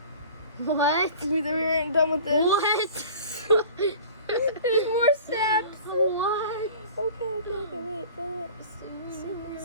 What? We weren't done with this. What? There's more steps. What? Okay.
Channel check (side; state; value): both; inverted; correlation -0.43